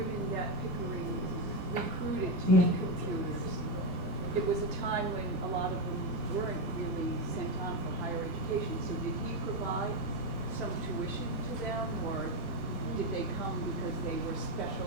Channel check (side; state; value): right; late; 1.1 ms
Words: that Pickering recruited to be computers, it was a time when a lot of them weren't really sent on for higher education. So did he provide some tuition to them, or did they come because they were special